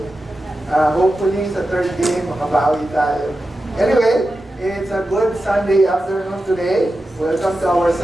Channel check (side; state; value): both; normal; correlation 0.91